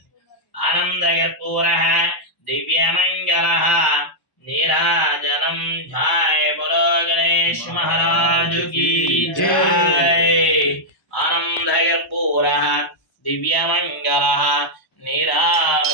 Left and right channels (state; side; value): late; right; 1.0 ms